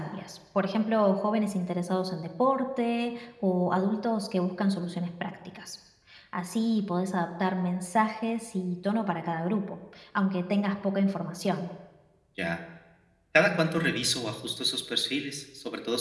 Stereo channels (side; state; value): both; identical; correlation 1.00